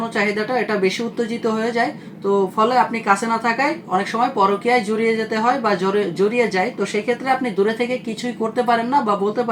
চাহিদাটা এটা বেশি উত্তেজিত হয়ে যায়, তো ফলে আপনি কাছে না থাকায় অনেক সময় পরকীয়ায় জড়িয়ে যেতে হয় বা জড়িয়ে যায়। তো সেই ক্ষেত্রে আপনি দূরে থেকে কিছুই করতে পারেন না বা বলতে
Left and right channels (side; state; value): both; identical; correlation 1.00